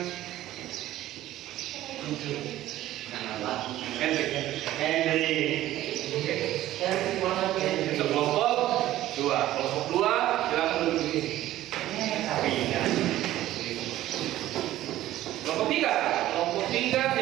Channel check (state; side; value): quieter; left; 14.4 dB